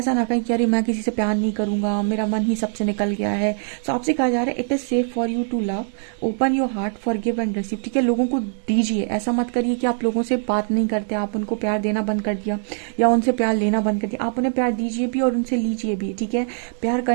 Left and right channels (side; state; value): left; silent; 64 dB below the other